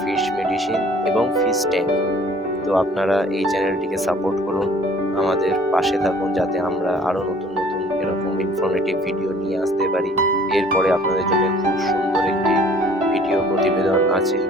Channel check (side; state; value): both; normal; correlation 0.54